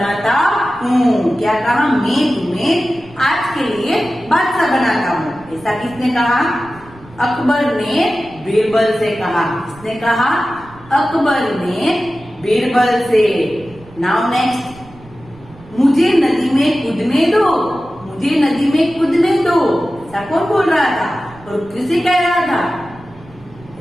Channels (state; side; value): noise; right; rumble, 23 dB below the sound